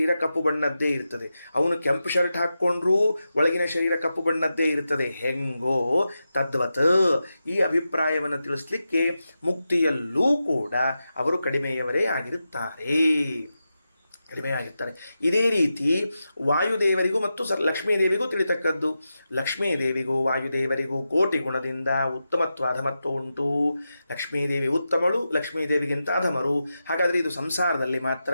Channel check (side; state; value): both; inverted; correlation -0.90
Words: ಕಪ್ಪು ಬಣ್ಣದ್ದೇ ಇರ್ತದೆ. ಅವನು ಕೆಂಪು ಶರ್ಟ್ ಹಾಕ್ಕೊಂಡ್ರೂ ಒಳಗಿನ ಶರೀರ ಕಪ್ಪು ಬಣ್ಣದ್ದೇ ಇರ್ತದೆ. ಹೆಂಗೋ ತದ್ವತ್ ಈ ಅಭಿಪ್ರಾಯವನ್ನು ತಿಳಿಸ್ಲಿಕ್ಕೆ ಮುಕ್ತಿಯಲ್ಲೂ ಕೂಡ ಅವರು ಕಡಿಮೆಯವರೇ ಆಗಿರುತ್ತಾರೆ. ಇದೇ ರೀತಿ ವಾಯುದೇವರಿಗೂ ಮತ್ತು ಲಕ್ಷ್ಮೀದೇವಿಗೂ ತಿಳಿತಕ್ಕದ್ದು. ಲಕ್ಷ್ಮೀದೇವಿಗೂ ವಾಯುದೇವರಿಗೂ ಕೋಟಿ ಗುಣದಿಂದ ಉತ್ತಮತ್ವ ಅಧಮತ್ವ ಉಂಟು. ಲಕ್ಷ್ಮೀದೇವಿ ಉತ್ತಮಳು, ಲಕ್ಷ್ಮೀದೇವಿಗಿಂತ ಅಧಮರು. ಹಾಗಾದರೆ ಇದು ಸಂಸಾರದಲ್ಲಿ ಮಾತ್ರ.